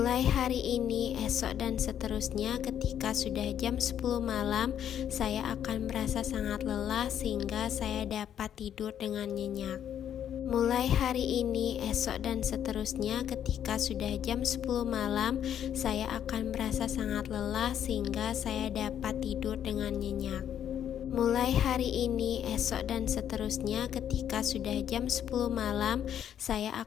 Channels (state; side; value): quieter; right; 9.8 dB